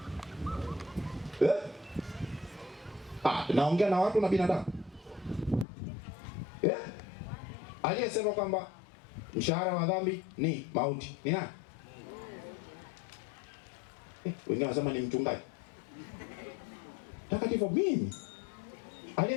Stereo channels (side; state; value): right; drops out; at 5.7 s